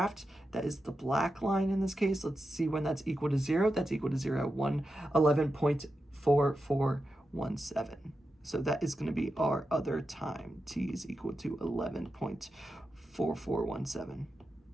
That is the black line in this case. Let's see when that's equal to 0. That's equal to 0, 11.4417. So that is going to be our other time. T is equal to 11.4417.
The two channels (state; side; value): normal; both; correlation 0.89